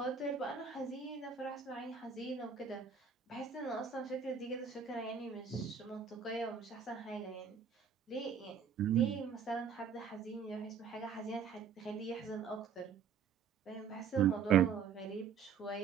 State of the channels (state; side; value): quieter; left; 6.7 dB